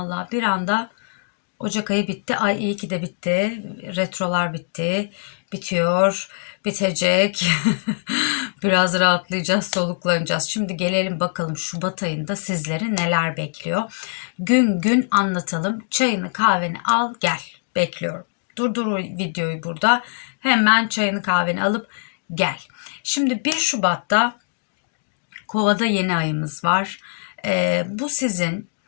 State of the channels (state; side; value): silent; right; digital silence